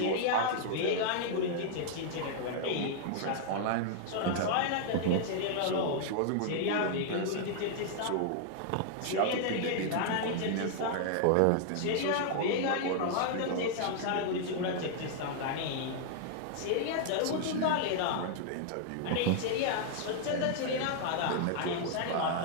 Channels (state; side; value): different; both; correlation -0.01